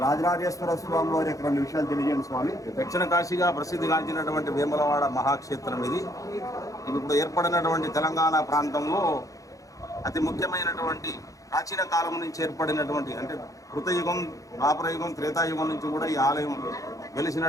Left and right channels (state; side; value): late; right; 0.16 ms